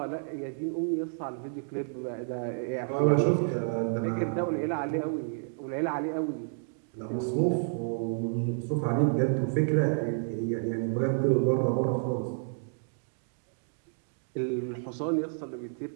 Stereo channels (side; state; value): left; silent; digital silence